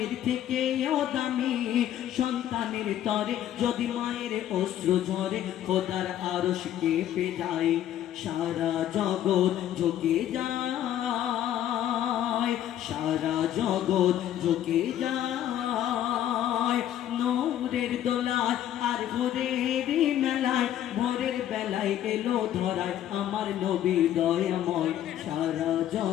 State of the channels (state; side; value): quieter; right; 11.5 dB